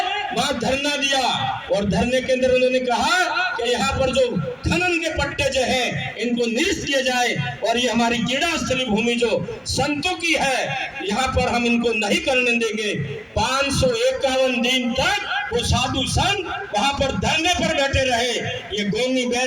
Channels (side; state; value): both; identical; correlation 1.00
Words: वहां धरना दिया और धरने के अंदर उन्होंने कहा कि यहाँ पर जो खनन के पट्टे जो हैं इनको निरस्त किए जाए और ये हमारी क्रीड़ा स्थली भूमि जो संतों की है, यहाँ पर हम इनको नहीं करने देंगे। 551 दिन तक वो साधु संत वहां पर धरने पर बैठे रहे। ये गोनी